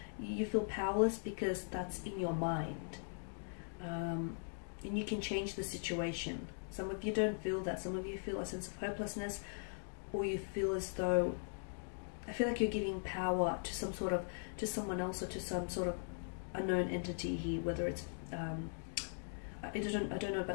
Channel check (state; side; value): silent; right; digital silence